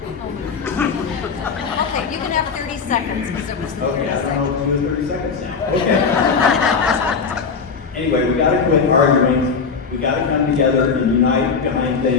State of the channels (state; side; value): quieter; right; 5.4 dB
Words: you can have 30 seconds. Because it was Okay, I don't know what to do in 30 seconds now. Okay. Anyway, we gotta quit arguing. We gotta come together and unite behind